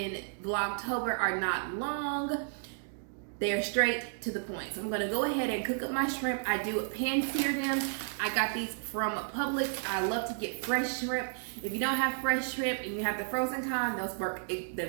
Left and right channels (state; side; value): silent; left; digital silence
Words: Vlogtober are not long. They're straight to the point. So I'm gonna go ahead and cook up my shrimp. I do pan sear them. I got these from Publix. I love to get fresh shrimp. If you don't have fresh shrimp and you have the frozen kind, they